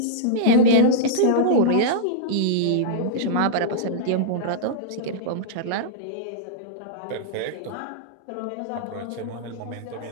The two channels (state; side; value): different; both; correlation -0.03